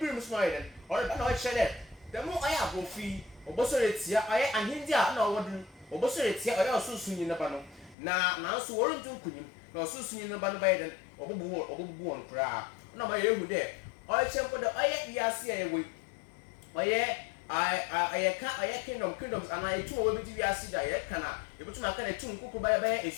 so na ɔyɛ dɛ ɔreba na ɔkyerɛ dɛ dɛm ɔyɛ abɔfi ɔbɔsɔre etia ɔyɛ ahindi a na ɔwɔ do ɔbɔsɔre etia ɔyɛ ɔsoso nyi neba no na nanso wɔrenti nkunim na ɔsoso nyi neba no bɛyɛ dɛ ɔbɔbubu wɔn koraa ɔna ɔyɛ ehu dɛ ɔyɛ mpo dɛ ɔyɛ wiase a yɛwɔ ɔyɛ kingdoms ana etum a wɔbɛdi wiase da yɛka na yɛbɛtum aka na etum nkoko bɛyɛ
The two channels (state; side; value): drops out; right; at 8.0 s